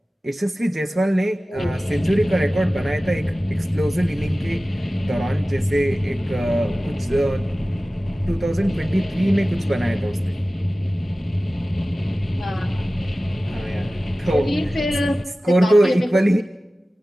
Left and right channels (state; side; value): normal; both; correlation 0.96